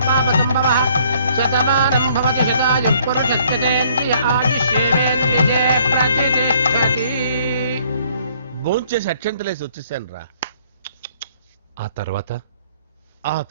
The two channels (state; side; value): inverted; both; correlation -0.62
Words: పాపసంభవః. శతమానం భవతి శతాయుః పురుషస్యేంద్రియ ఆయుష్యేవేంద్రియే ప్రతిష్టతి. భోంచేసి అక్షంతలేసి వచ్చేసాను రా. ఆ